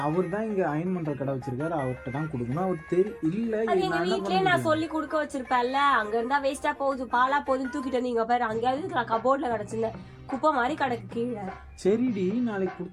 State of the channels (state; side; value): identical; both; correlation 1.00